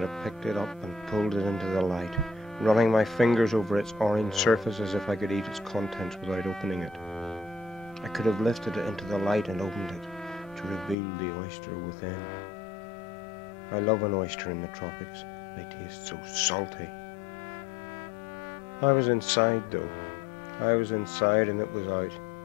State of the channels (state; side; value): drops out; right; at 11.0 s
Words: have picked it up and pulled it into the light, running my fingers over its orange surface as if I could eat its contents without opening it. I could have lifted it into the light and opened it to reveal the oyster within. I love an oyster in the tropics. They taste so salty. I was inside, though. I was inside and it was out.